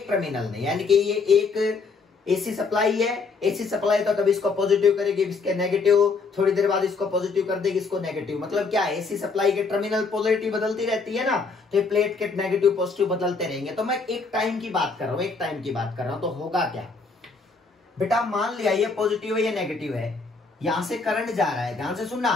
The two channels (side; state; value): right; quieter; 4.4 dB